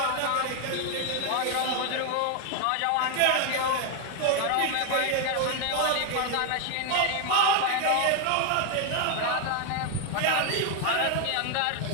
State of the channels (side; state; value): both; different; correlation 0.01